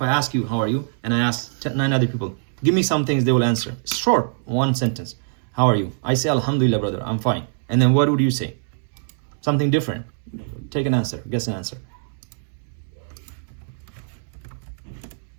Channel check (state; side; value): silent; left; digital silence